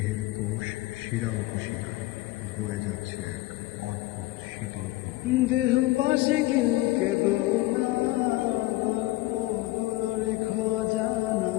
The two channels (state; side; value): quieter; right; 18.7 dB